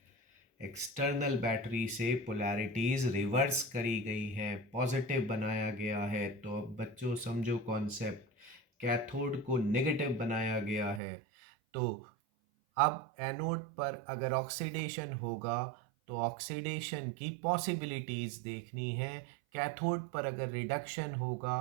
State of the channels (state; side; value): drops out; left; at 11.0 s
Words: एक्सटर्नल बैटरी से पोलैरिटीज़ रिवर्स करी गई हैं, पॉजिटिव बनाया गया है. तो अब बच्चों समझो कॉन्सेप्ट. कैथोड को नेगेटिव बनाया गया है, तो अब एनोड पर अगर ऑक्सीडेशन होगा तो ऑक्सीडेशन की पॉसिबिलिटीज़ देखनी है. कैथोड पर अगर रिडक्शन